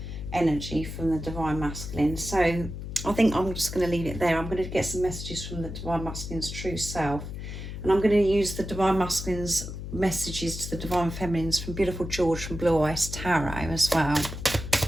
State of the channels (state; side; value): noise; left; hum, 8 dB below the sound